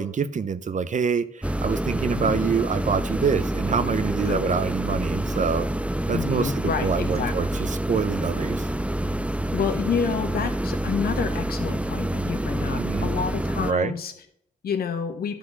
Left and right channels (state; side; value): normal; both; correlation 0.61